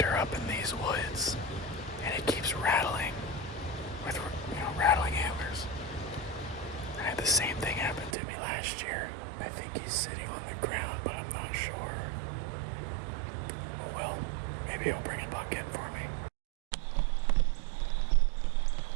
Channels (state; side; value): drops out; left; at 8.2 s